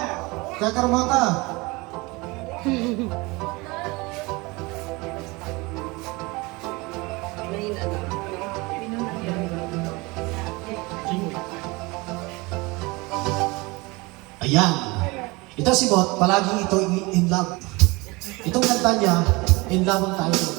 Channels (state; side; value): quieter; left; 24.4 dB